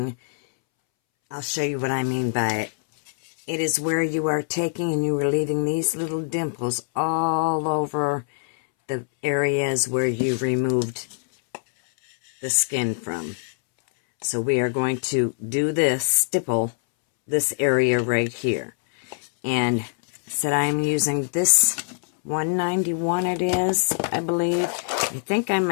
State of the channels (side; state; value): right; silent; 63 dB below the other